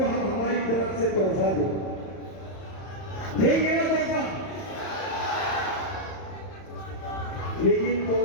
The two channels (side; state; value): right; late; 31 ms